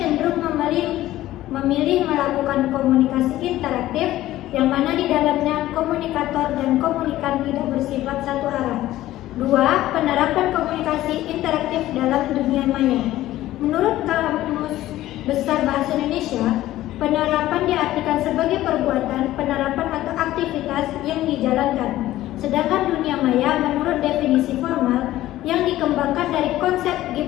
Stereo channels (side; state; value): right; quieter; 15.0 dB